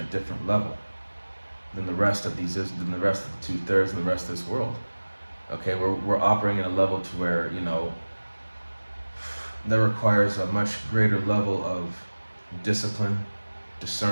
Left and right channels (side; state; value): both; inverted; correlation -1.00